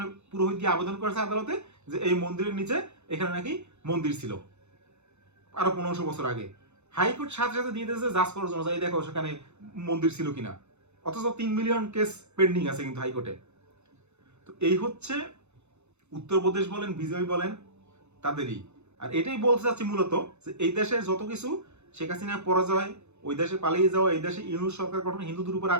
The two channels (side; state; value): left; late; 0.81 ms